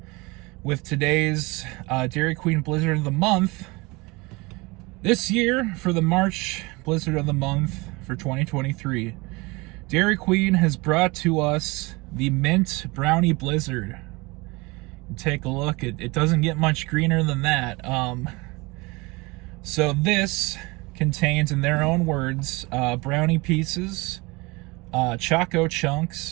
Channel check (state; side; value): quieter; left; 24.7 dB